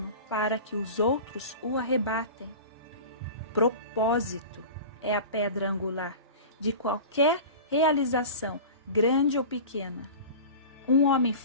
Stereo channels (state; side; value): inverted; both; correlation -0.34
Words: para que os outros o arrebatem. Propósito é a pedra angular de qualquer realização, grande ou pequena. Um homem